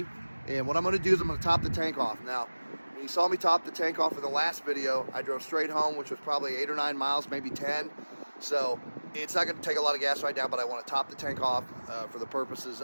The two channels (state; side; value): inverted; both; correlation -1.00